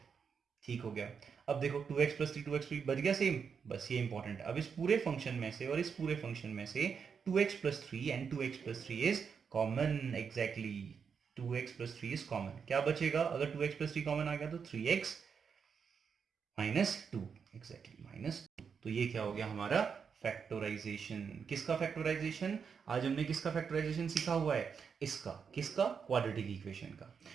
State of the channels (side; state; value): left; quieter; 6.4 dB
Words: ठीक हो गया। अब देखो 2x प्लस 3 2x बच गया सेम, बस ये इंपॉर्टेंट है। अब इस पूरे फंक्शन में से और इस पूरे फंक्शन में से 2x plus 3 and 2x plus 3 is common, exactly 2x plus 3 is common. क्या बचेगा, अगर 2x प्लस 3 कॉमन आ गया तो 3x माइनस 2, एग्जैक्टली माइनस 2। तो ये क्या हो गया हमारा फैक्टराइजेशन। किसका फैक्टराइजेशन, आज हमने किसका फैक्टराइजेशन सीखा हुआ है, इसका, किसका, क्वाड्रेटिक इक्वेशन का।